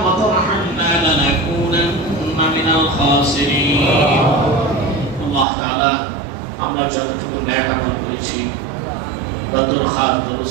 وترحمنا لنكونن من الخاسرين. الله تعالى আমরা যতটুকু ন্যায় আমল করেছি বদর খাত দরুদ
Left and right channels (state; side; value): drops out; left; at 5.5 s